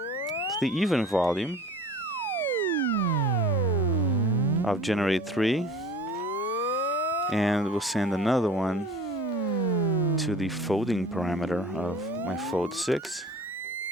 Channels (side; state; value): both; normal; correlation 0.44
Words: the even volume of generate 3. And we'll send another one to the folding parameter of my fold 6.